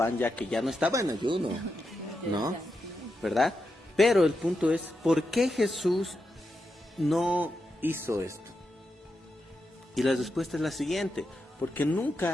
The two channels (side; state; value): both; normal; correlation 0.86